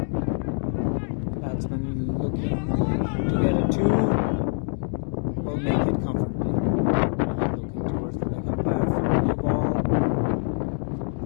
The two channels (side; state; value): right; silent; 57 dB below the other